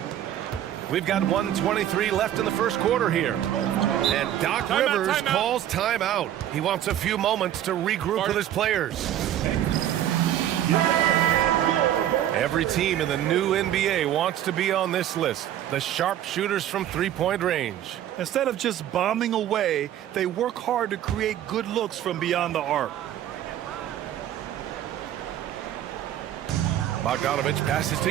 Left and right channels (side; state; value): left; quieter; 11.6 dB